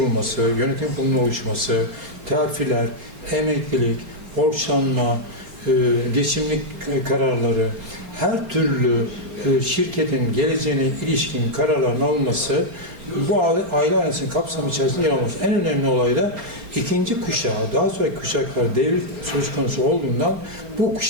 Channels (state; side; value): late; left; 4.3 ms